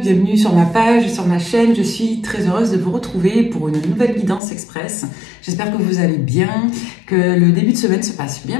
bienvenue sur ma page, sur ma chaîne. Je suis très heureuse de vous retrouver pour une nouvelle guidance express. J'espère que vous allez bien, que le début de semaine se passe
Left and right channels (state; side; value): drops out; right; at 4.4 s